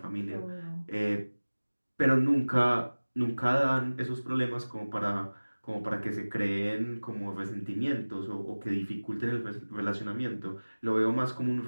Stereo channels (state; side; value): inverted; both; correlation -1.00